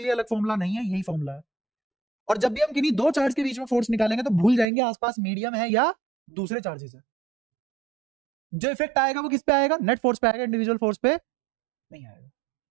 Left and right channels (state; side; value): drops out; left; at 4.7 s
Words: लिए अलग फॉर्मूला नहीं है, यही फॉर्मूला है। और जब भी हम किन्हीं दो चार्ज के बीच में फोर्स निकालेंगे तो भूल जाएंगे आसपास मीडियम है या दूसरे चार्जेस है। जो इफेक्ट आएगा वो किस पे आएगा? नेट फोर्स पे आएगा, इंडिविजुअल फोर्स पे नहीं आएगा।